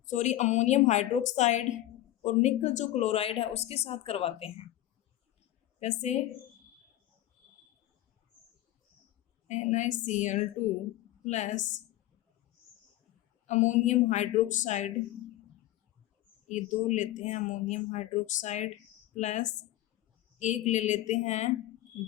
हाइड्रोक्साइड और निकल जो क्लोराइड है उसके साथ करवाते हैं। कैसे? NaCl2 प्लस अमोनियम हाइड्रोक्साइड, ये दो लेते हैं अमोनियम हाइड्रोक्साइड, प्लस एक ले लेते हैं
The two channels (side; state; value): right; quieter; 14.8 dB